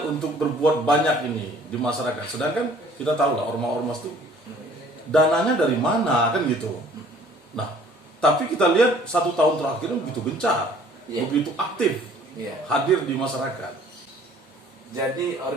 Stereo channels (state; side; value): normal; both; correlation 0.54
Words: untuk berbuat banyak ini di masyarakat. Sedangkan kita tahu lah ormas-ormas itu dananya dari mana kan gitu. Nah, tapi kita lihat 1 tahun terakhir begitu gencar, begitu aktif hadir di masyarakat. Jadi